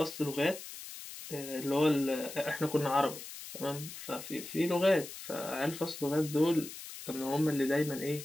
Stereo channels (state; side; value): noise; left; hiss, 12 dB below the sound